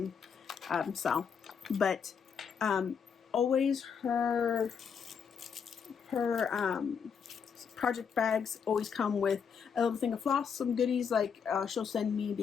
style. But always her project bags always come with a little thing of floss, some goodies like she'll send me,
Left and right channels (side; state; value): right; quieter; 6.7 dB